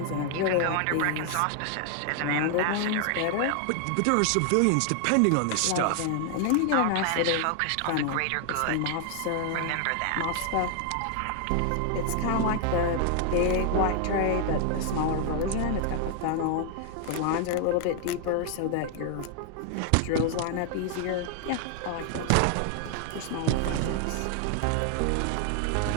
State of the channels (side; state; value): both; different; correlation 0.00